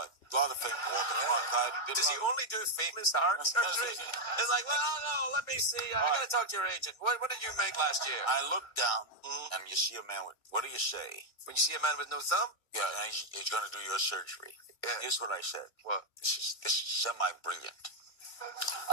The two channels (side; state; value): right; late; 2.3 ms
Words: lot of famous Walter Cronkite. Does he only do famous heart surgery? It's like, well, no, let me see. I gotta talk to your agent. What did you make last year? I look down, and you see a man with, what do you say? When you see a man with no thumb? Yeah, and he's going to do your surgery. Yeah. Here's what I said. What? This is semi-brilliant.